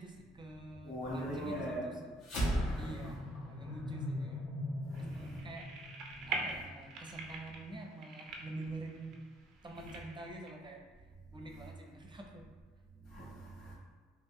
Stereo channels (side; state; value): both; normal; correlation 0.68